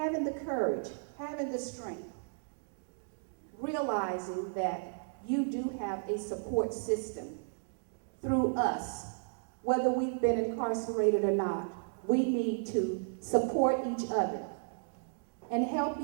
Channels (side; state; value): left; silent; digital silence